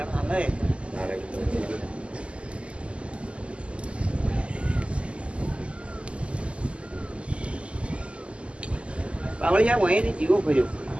લે પાવળિયા હોય ને જીવો કર્યો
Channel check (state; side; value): late; left; 0.055 ms